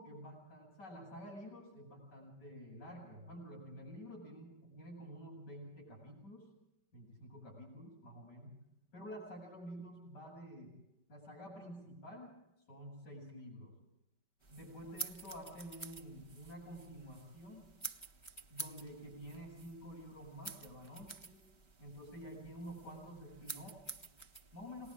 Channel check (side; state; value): right; late; 5.2 ms